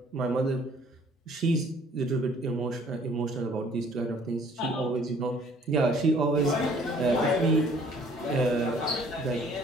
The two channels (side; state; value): both; normal; correlation 0.57